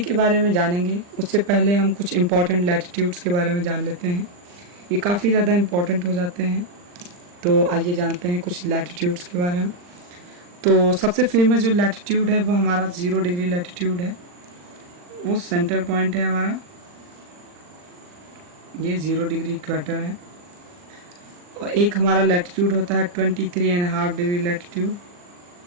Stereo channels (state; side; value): late; left; 40 ms